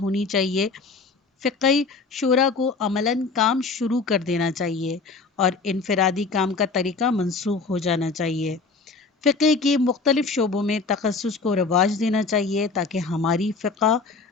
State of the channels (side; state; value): right; quieter; 4.2 dB